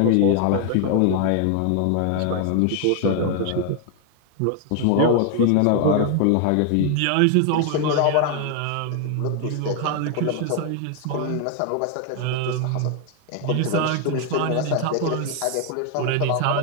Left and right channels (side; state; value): both; different; correlation 0.00